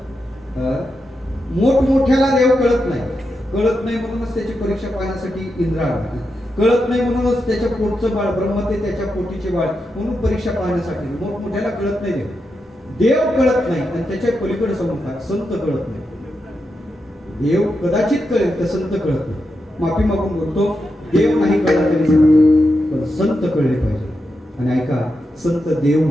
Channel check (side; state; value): both; normal; correlation 0.87